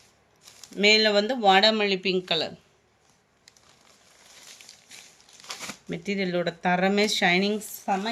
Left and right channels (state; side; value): identical; both; correlation 1.00